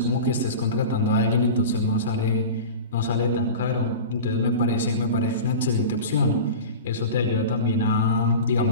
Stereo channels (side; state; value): both; inverted; correlation -0.32